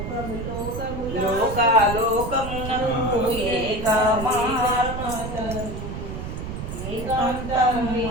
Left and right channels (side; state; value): right; noise; rumble, 7 dB below the sound